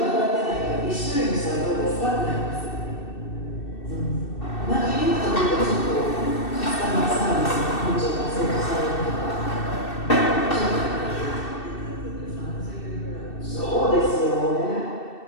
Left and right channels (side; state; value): right; late; 2.6 ms